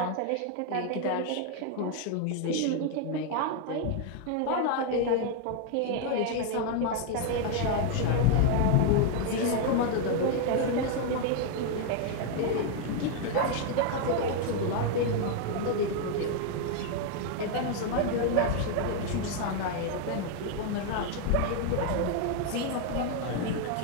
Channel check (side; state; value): both; different; correlation 0.00